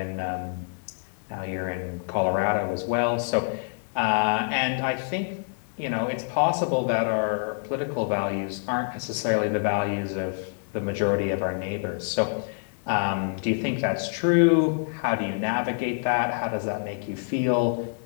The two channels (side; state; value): right; silent; digital silence